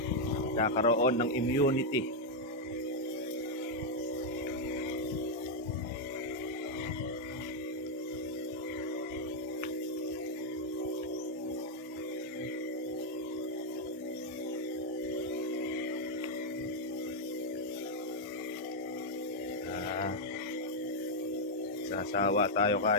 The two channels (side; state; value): both; normal; correlation -0.02